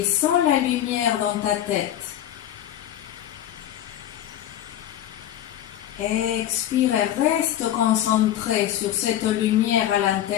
sens la lumière dans ta tête. Expire et reste concentré sur cette lumière à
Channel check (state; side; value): quieter; right; 11.8 dB